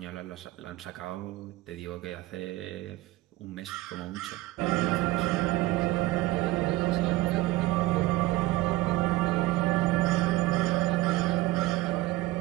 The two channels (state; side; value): quieter; left; 18.2 dB